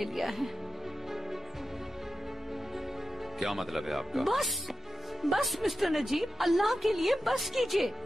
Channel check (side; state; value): both; normal; correlation 0.92